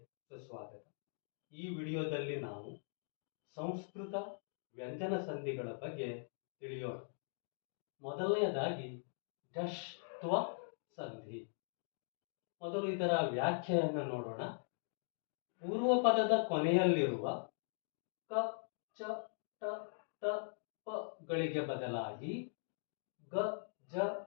ಸುಸ್ವಾಗತ. ಈ ವಿಡಿಯೋದಲ್ಲಿ ನಾವು ಸಂಸ್ಕೃತ ವ್ಯಂಜನ ಸಂಧಿಗಳ ಬಗ್ಗೆ ತಿಳಿಯೋಣ. ಮೊದಲನೆಯದಾಗಿ ಢಶ್ತ್ವ ಸಂಧಿ. ಮೊದಲು ಇದರ ವ್ಯಾಖ್ಯೆಯನ್ನು ನೋಡೋಣ. ಪೂರ್ವ ಪದದ ಕೊನೆಯಲ್ಲಿರುವ ಕ, ಚ, ಟ, ತ, ಪ ಗಳಿಗೆ ಬದಲಾಗಿ ಗ, ಜ,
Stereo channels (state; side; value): silent; right; digital silence